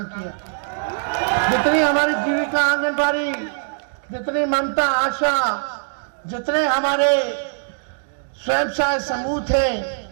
किया। जितनी हमारी जीविका आंगनबाड़ी, जितनी ममता आशा, जितने हमारे स्वयं सहायता समूह थे,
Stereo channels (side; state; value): left; silent; digital silence